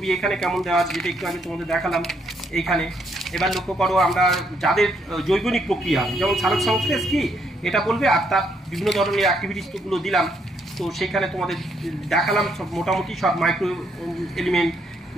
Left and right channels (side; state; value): both; normal; correlation 0.73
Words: এখানে কেমন দেওয়া আছে, যেটা একটু আগে তোমাদের দেখালাম এইখানে। এবার লক্ষ্য করো আমরা যাদের জৈবনিক প্রক্রিয়া, যেমন সালোক সংশ্লেষ কি এটা বলবে, আর তার বিভিন্ন ধরনের অ্যাক্টিভিটিসগুলো দিলাম। তো সেখানে তোমাদের দেখালাম সব মোটামুটি সব মাইক্রো এলিমেন্ট